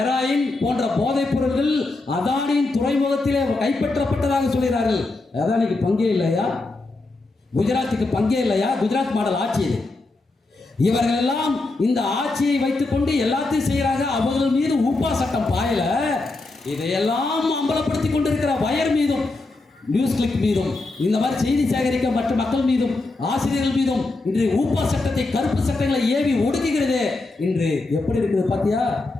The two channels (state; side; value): quieter; right; 3.2 dB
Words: போன்ற போதைப் பொருட்கள் அதானியின் துறைமுகத்திலே கைப்பற்றப்பட்டதாக சொல்கிறார்கள். அதானிக்கு பங்கே இல்லையா? குஜராத்துக்கு பங்கே இல்லையா? குஜராத் மாடல் ஆட்சி இது. இவர்கள் எல்லாம் இந்த ஆட்சியை வைத்துக் கொண்டு எல்லாத்தையும் செய்கிறாங்க. அவர்கள் மீது ஊப்பா சட்டம் பாயல. இதையெல்லாம் அம்பலப்படுத்தி கொண்டிருக்கிற வயர் மீதும், நியூஸ் கிளிக் மீதும், இந்த மாதிரி செய்தி சேகரிக்க மற்ற மக்கள் மீதும், ஆசிரியர்கள் மீதும் இன்று ஊப்பா சட்டத்தை, கருப்பு சட்டங்களை ஏவி ஒடுக்குகிறது. இன்று எப்படி இருக்குது பாத்தியா?